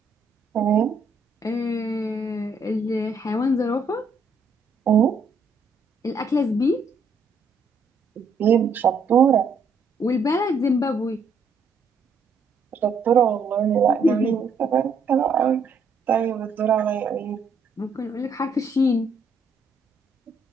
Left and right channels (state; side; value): quieter; left; 3.8 dB